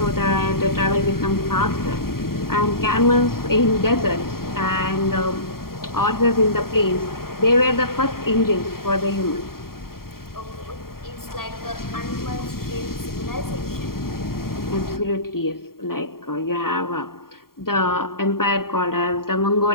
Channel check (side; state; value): right; late; 0.93 ms